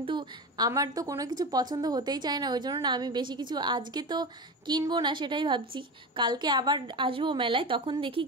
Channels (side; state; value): both; normal; correlation 0.24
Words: আমার তো কোনো কিছু পছন্দ হতেই চায় না, ওই জন্য না আমি বেশি কিছু আজকে তো কিনবো না, সেটাই ভাবছি। কালকে আবার আসবো মেলায়, তখন দেখি